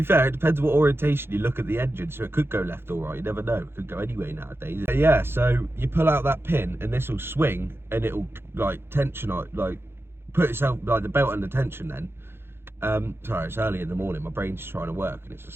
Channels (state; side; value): late; left; 0.11 ms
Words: fair, it depends what orientation you look at the engine, so it could go left or right, you never know, it could go anyway nowadays. But yeah, so you pull out that pin and this will swing, and it'll like tension, like put itself, like the belt under tension then. Sorry, it's early in the morning, my brain's trying to work and it's a